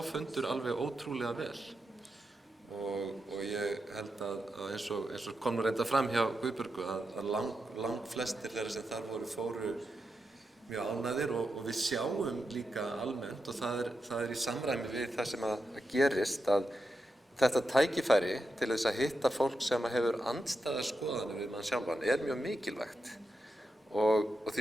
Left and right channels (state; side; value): normal; both; correlation 0.87